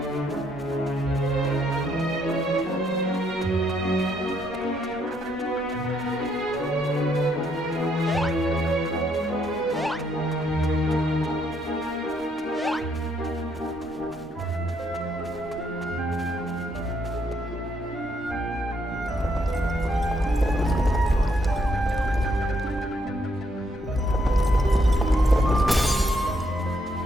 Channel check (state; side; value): normal; both; correlation 0.73